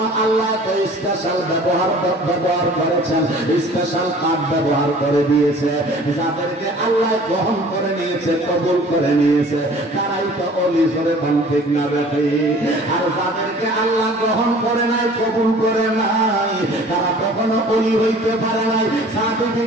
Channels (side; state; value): both; normal; correlation 0.48